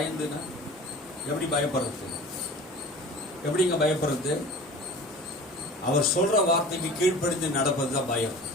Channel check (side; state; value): both; normal; correlation 0.40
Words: எப்படி பயப்படுறது? எப்படிங்க பயப்படுறது? அவர் சொல்ற வார்த்தைக்கு கீழ்ப்படிந்து நடப்பது தான் பயம்.